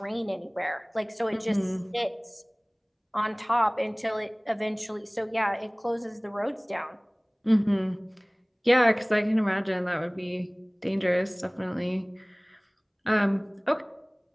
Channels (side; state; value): both; identical; correlation 1.00